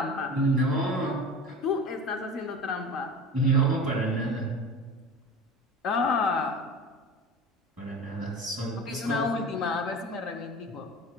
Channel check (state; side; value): normal; both; correlation 0.34